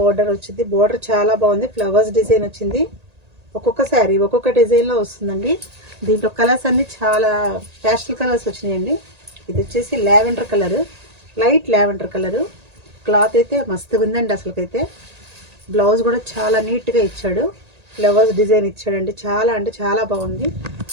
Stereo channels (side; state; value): left; late; 1.8 ms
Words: వచ్చింది. బోర్డర్ చాలా బాగుంది. ఫ్లవర్స్ డిజైన్ వచ్చింది. ఒక్కొక్క శారీ ఒక్కొక్క డిజైన్లో వస్తుందండి. దీంట్లో కలర్స్ అన్నీ చాలా ప్యాస్టల్ కలర్స్ వచ్చినాయండి. ఇది వచ్చేసి lavender colour, light lavender colour. Cloth అయితే మస్తుగా ఉందండి. అసలుకైతే బ్లౌజ్ కూడా చాలా నీట్గా ఇచ్చాడు. ఫ్లవర్స్ డిజైన్ ఇచ్చాడండి. చాలా అంటే చాలా బాగుంది.